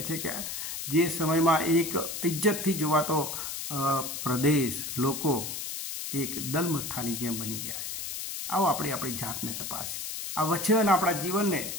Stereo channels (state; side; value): noise; left; hiss, 6 dB below the sound